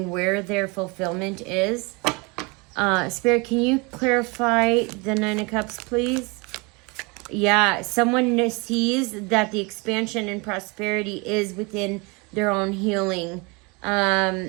where their fulfillment is. Spirit, can you clarify the Nine of Cups, please? Yeah, someone sees that the expansion and prosperity is within their own healing.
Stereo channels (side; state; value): left; quieter; 28.4 dB